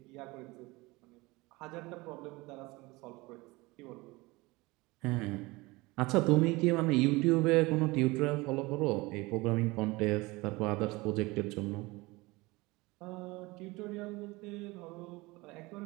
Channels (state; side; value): quieter; left; 22.5 dB